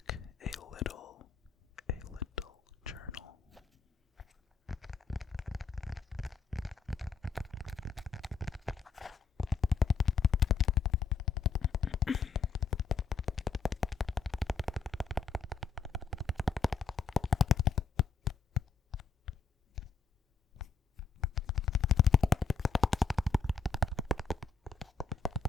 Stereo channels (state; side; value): quieter; right; 5.4 dB